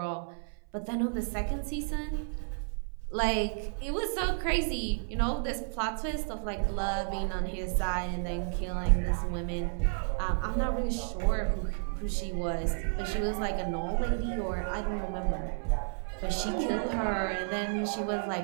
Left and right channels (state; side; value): silent; left; 57 dB below the other